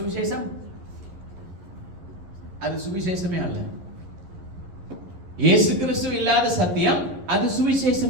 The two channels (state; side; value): late; left; 11 ms